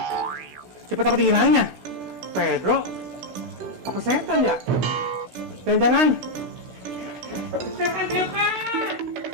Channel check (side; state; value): left; late; 16 ms